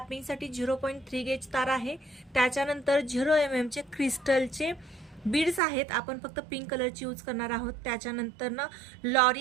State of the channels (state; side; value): drops out; left; at 5.6 s